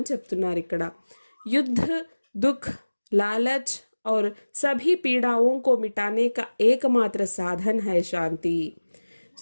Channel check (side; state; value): both; inverted; correlation -1.00